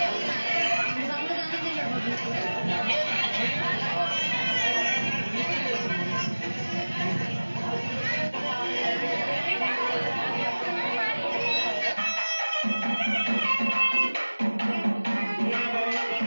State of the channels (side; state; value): both; inverted; correlation -1.00